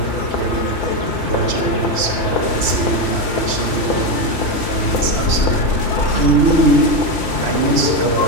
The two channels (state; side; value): late; right; 3.1 ms